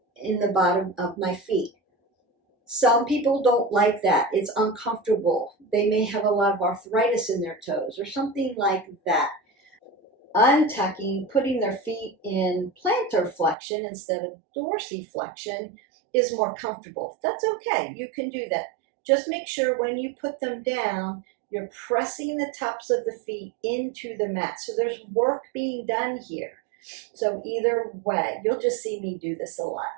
in the bottom of my feet. Some people don't like that. It's uncomfortable. They may have a lot of arthritis in their toes or something like that. Untucking, putting their feet in plantar flexion instead of dorsiflexion is more comfortable. That's okay. You can do that. Just make sure when you put them down, you're pressing the tops of the feet into the mat. So there's work being done here. So either way, you'll just see me do this a lot.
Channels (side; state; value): left; drops out; at 13.6 s